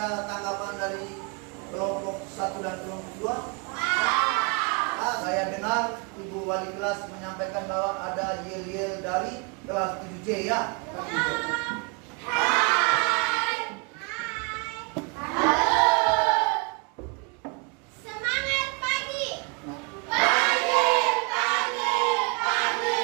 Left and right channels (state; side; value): quieter; left; 31.5 dB